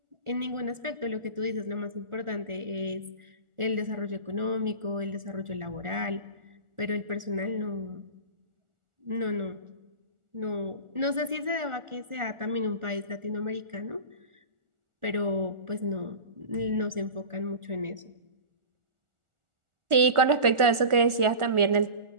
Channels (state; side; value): late; left; 1.4 ms